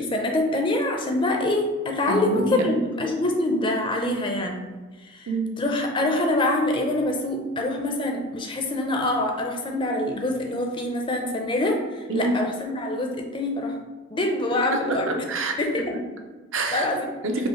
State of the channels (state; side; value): normal; both; correlation 0.34